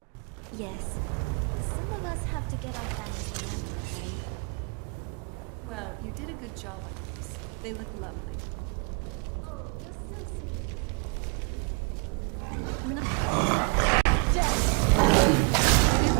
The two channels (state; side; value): quieter; left; 35.8 dB